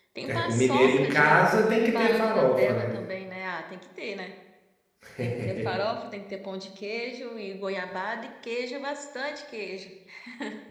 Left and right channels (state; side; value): identical; both; correlation 1.00